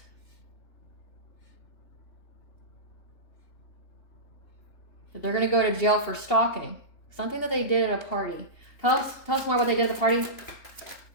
That they're going to go to jail for stalking. Something that they did at a party. Tell us more what they did at the party.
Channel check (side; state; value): right; late; 2.7 ms